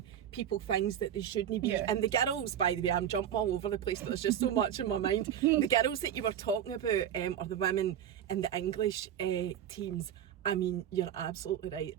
people things that they shouldn't be. And the girls, by the way, I'm jumping all over the place, but there's just so much in my mind. The girls that you were talking about, or the women in the English teams, I mean, you're absolutely right.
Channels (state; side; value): quieter; left; 9.8 dB